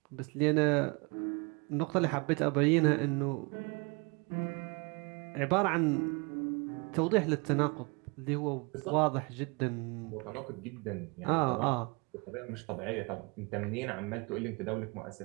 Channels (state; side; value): quieter; left; 30.5 dB